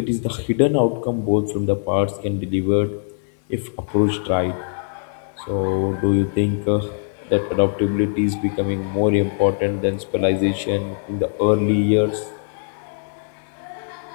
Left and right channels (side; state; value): right; silent; 64 dB below the other